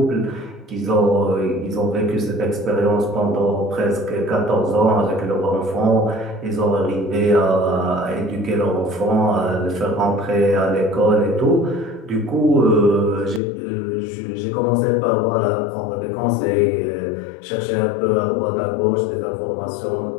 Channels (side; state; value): right; drops out; at 13.4 s